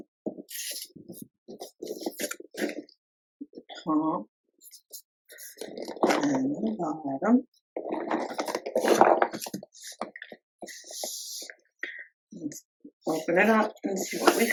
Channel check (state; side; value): identical; both; correlation 1.00